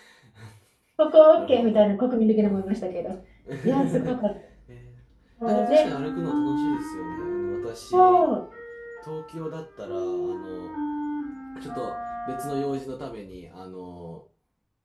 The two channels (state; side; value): identical; both; correlation 1.00